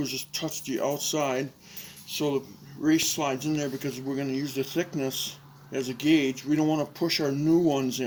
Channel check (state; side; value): identical; both; correlation 1.00